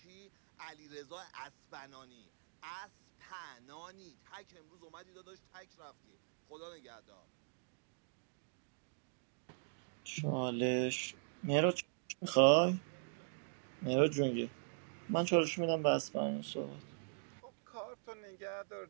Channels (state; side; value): silent; left; digital silence